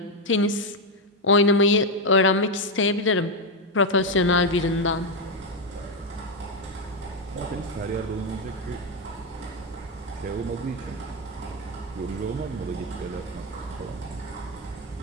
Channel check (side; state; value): both; normal; correlation 0.05